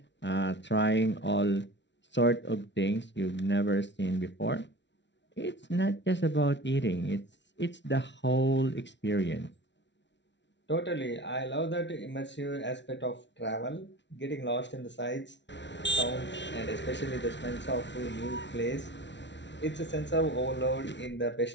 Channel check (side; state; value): right; late; 0.52 ms